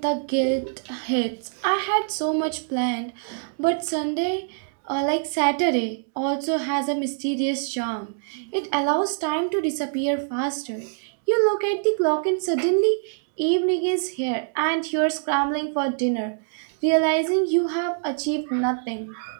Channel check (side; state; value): left; silent; digital silence